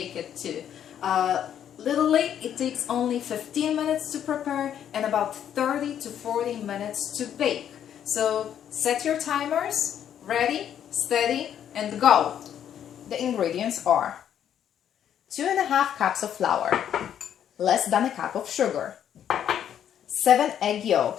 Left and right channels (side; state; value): right; quieter; 9.6 dB